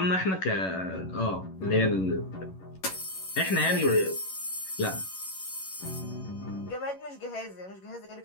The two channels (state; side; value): late; right; 11 ms